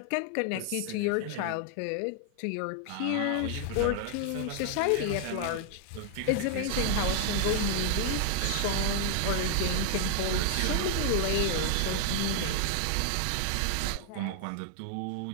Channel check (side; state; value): both; different; correlation 0.00